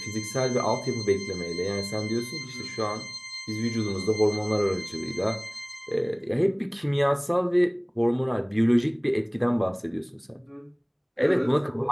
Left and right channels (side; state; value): both; identical; correlation 1.00